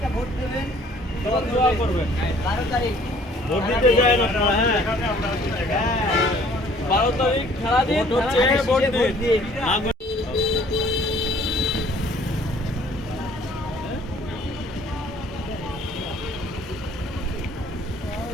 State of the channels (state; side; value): normal; both; correlation 0.57